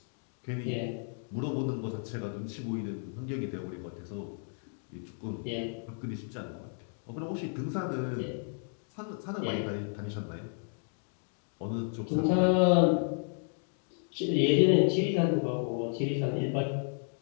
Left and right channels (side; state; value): right; silent; 56 dB below the other